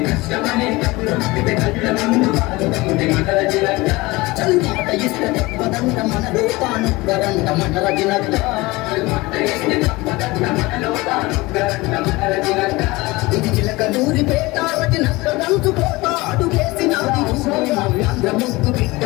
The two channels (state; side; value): quieter; right; 21.9 dB